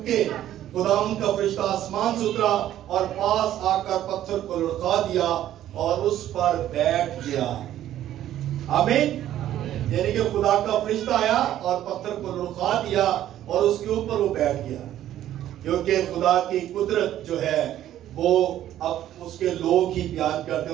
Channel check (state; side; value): quieter; left; 12.3 dB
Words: خداوند کا فرشتہ آسمان سے اترا اور پاس آ کر پتھر کو لڑکا دیا اور اس پر بیٹھ گیا. آمین. یعنی کہ خدا کا فرشتہ آیا اور پتھر کو لڑکا دیا اور اس کے اوپر وہ بیٹھ گیا. کیونکہ خدا کی قدرت جو ہے وہ اب اس کے لوگ ہی بیان کرتے